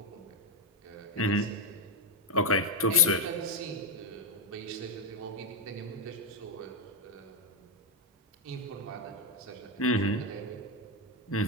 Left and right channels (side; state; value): both; normal; correlation 0.03